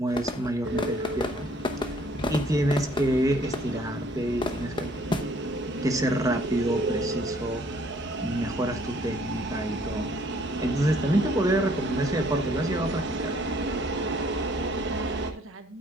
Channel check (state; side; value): normal; both; correlation 0.61